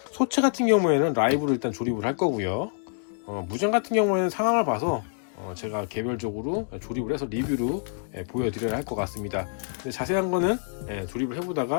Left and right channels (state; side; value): silent; right; digital silence